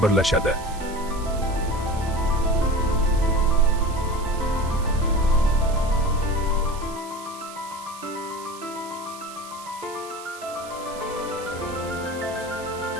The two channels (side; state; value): right; noise; hiss, 17 dB below the sound